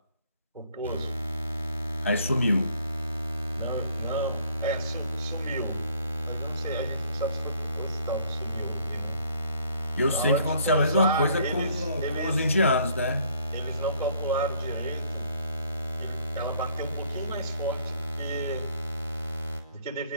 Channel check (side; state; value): both; inverted; correlation -0.62